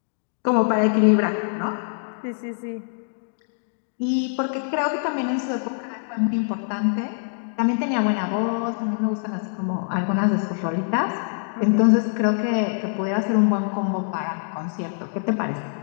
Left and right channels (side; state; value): right; silent; digital silence